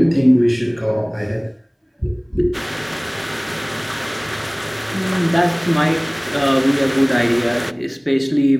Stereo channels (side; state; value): both; identical; correlation 1.00